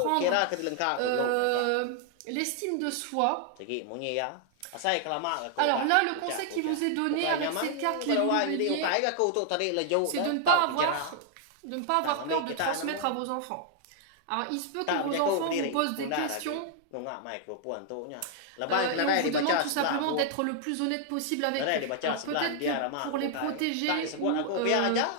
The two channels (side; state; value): both; different; correlation 0.00